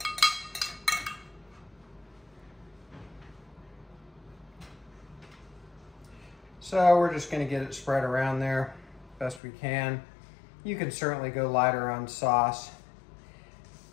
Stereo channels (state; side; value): drops out; right; at 9.4 s